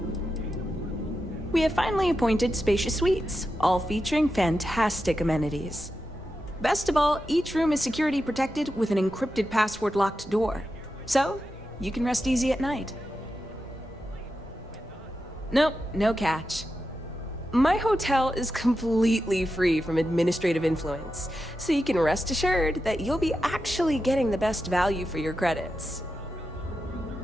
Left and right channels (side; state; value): both; normal; correlation 0.89